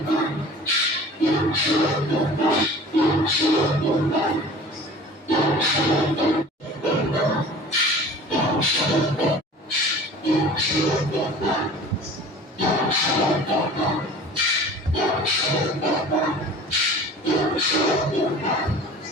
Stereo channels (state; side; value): normal; both; correlation 0.43